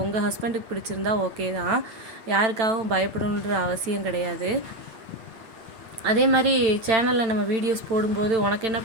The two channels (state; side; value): late; left; 8.9 ms